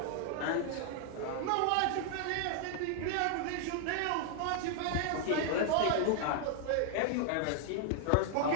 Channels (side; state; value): both; different; correlation 0.00